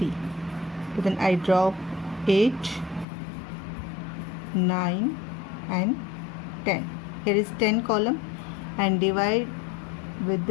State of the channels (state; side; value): drops out; right; at 3.1 s